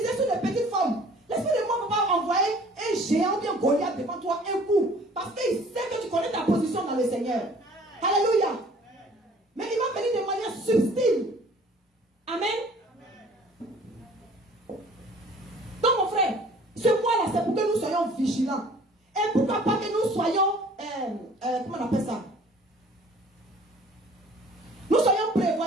sur des petites formes. L'esprit de moi ne va pas envoyer un géant bien Goliath devant toi un coup. Parce qu'il sait que tu connais ta position dans le Seigneur. Alléluia. Mais il va venir de manière subtile. Amen. Donc mon frère, ce mois-là, c'est pour que nous soyons vigilants. Et pourquoi pas que nous soyons, comment on appelle ça? Nous soyons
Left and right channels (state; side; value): normal; both; correlation 0.52